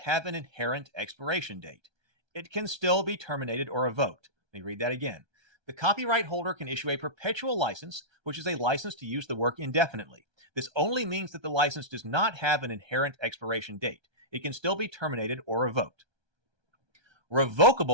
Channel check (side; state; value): left; late; 1.3 ms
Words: an inherent expiration date. It can still be terminated or revoked. Let me read that again. The copyright holder can issue a perpetual license, which is a license to use the work indefinitely. This only means that the license does not have an inherent expiration date. It can still be terminated or revoked.